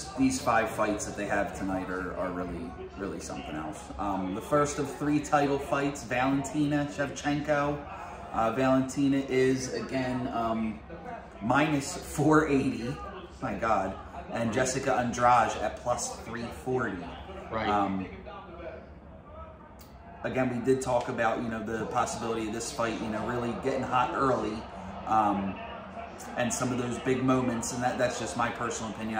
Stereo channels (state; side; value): identical; both; correlation 1.00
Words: these 5 fights that they have tonight are really something else. The first of 3 title fights, Valentina Shevchenko. Valentina is again minus 480. My God. And Jessica Andrade at plus 340. Right. Again, we did talk about, you know, the possibility of this fight, you know, really getting hot early, and some of those big moments, and that's just my personal opinion.